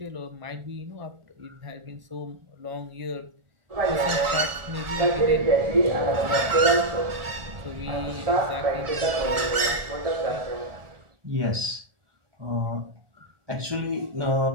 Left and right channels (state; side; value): late; left; 1.7 ms